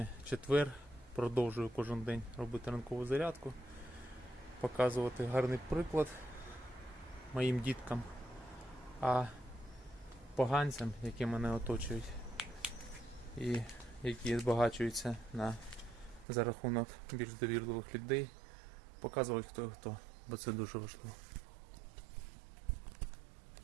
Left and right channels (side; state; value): left; drops out; at 16.2 s